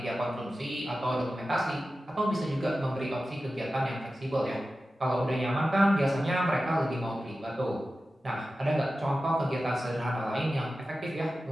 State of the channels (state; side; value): normal; both; correlation 0.94